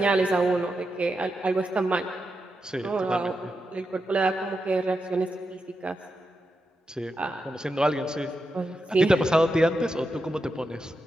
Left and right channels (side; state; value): both; normal; correlation 0.87